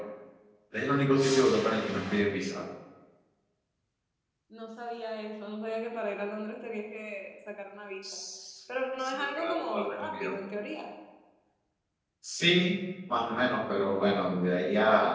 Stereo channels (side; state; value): both; identical; correlation 1.00